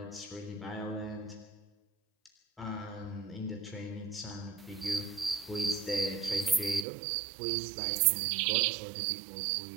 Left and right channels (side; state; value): left; drops out; at 6.9 s